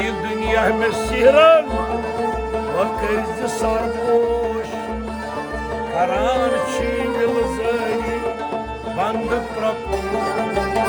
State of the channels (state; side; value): identical; both; correlation 1.00